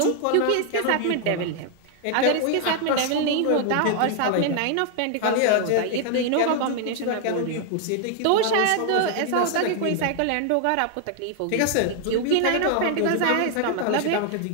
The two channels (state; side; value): different; both; correlation 0.00